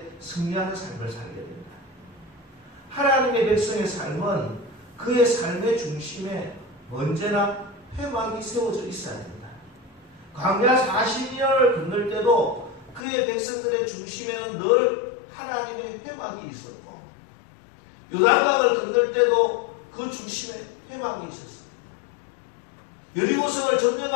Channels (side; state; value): right; drops out; at 13.0 s